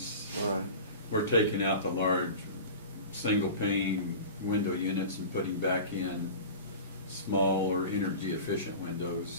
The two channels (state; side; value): inverted; both; correlation -0.34